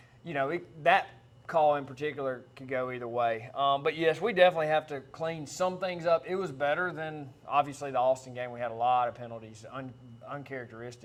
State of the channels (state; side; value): identical; both; correlation 1.00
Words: that call in particular could go either way. But, yes, we definitely have to clean some things up. It was better than, obviously, the Austin game. We had a lot of penalties,